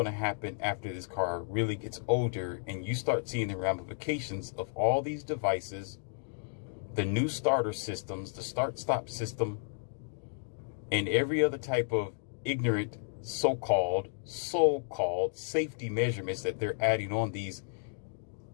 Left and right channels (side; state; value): right; silent; digital silence